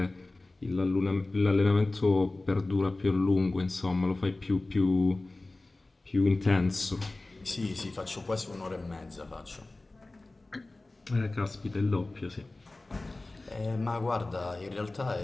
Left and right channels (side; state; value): right; quieter; 3.0 dB